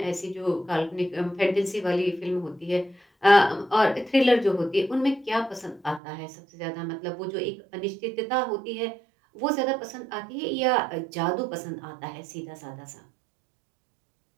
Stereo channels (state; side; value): drops out; left; at 6.0 s